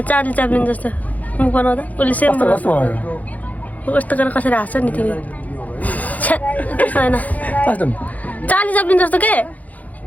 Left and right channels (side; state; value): right; late; 0.076 ms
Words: च्याप्लिन जस्तो मुख बनाउँदा उसले सेम बनाउँछ कस्तो गरेर कसरी हाँस्छ नि तिमी त्यस्तो होइन चार्ली च्याप्लिन जस्तो के